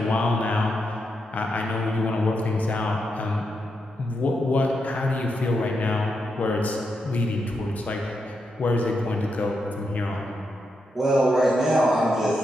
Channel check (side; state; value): both; normal; correlation 0.84